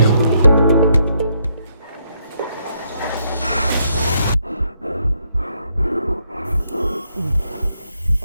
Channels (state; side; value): inverted; both; correlation -0.75